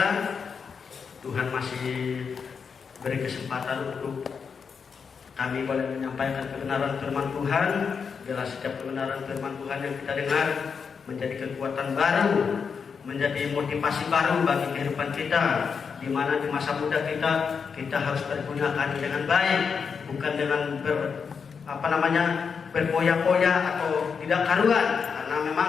Tuhan masih beri kesempatan untuk kami boleh menyampaikan kebenaran firman Tuhan. Bila setiap kebenaran firman Tuhan yang kita dengar menjadi kekuatan baru, menjadi motivasi baru bagi kehidupan kita, di mana di masa muda kita harus pergunakan dengan baik, bukan dengan berpoya-poya atau tidak karuan. Karena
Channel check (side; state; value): right; quieter; 6.0 dB